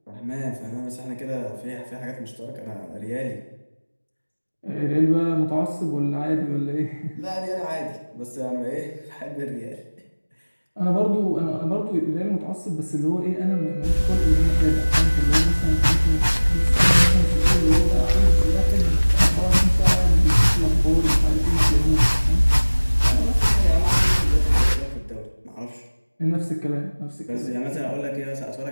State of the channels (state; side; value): inverted; both; correlation -1.00